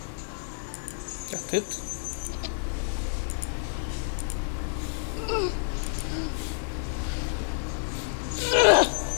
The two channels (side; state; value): right; silent; 59 dB below the other